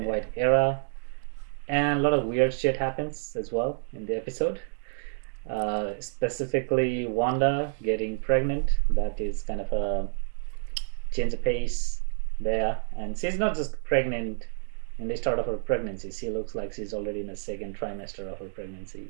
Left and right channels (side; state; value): left; silent; digital silence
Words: white era. And a lot of weird shit happens as well in the episode. Specifically, Wanda getting pregnant. That is kind of a change of pace there. And she's not just pregnant in the start of her pregnancy. She looks like she's already in the second trimester of her